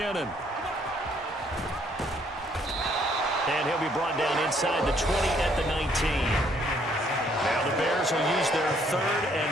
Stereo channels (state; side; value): normal; both; correlation 0.66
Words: And he'll be brought down inside the 20 at the 19. Now the Bears will use their 3rd and